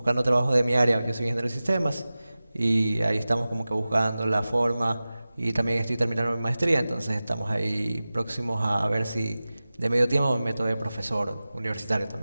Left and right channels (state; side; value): inverted; both; correlation -0.96